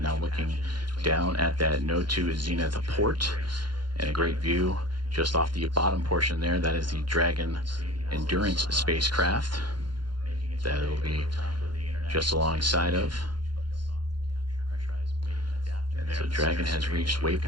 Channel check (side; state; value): left; late; 0.71 ms